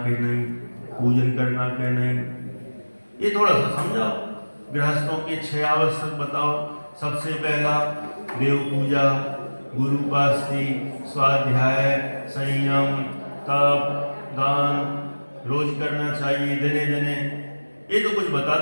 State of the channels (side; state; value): both; inverted; correlation -1.00